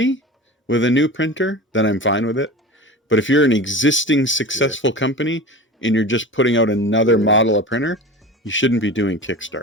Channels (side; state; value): both; normal; correlation 0.33